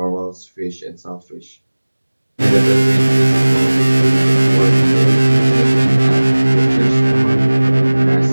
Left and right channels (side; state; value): both; inverted; correlation -1.00